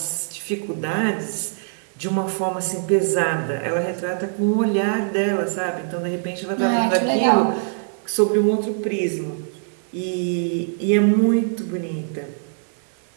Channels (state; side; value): silent; left; digital silence